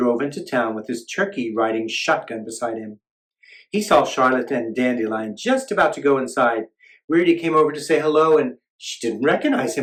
into town with his turkey riding shotgun beside him. He saw Charlotte and Dandelion just about to go inside. Weirdy came over to say hello, and she didn't recognize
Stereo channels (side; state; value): both; identical; correlation 1.00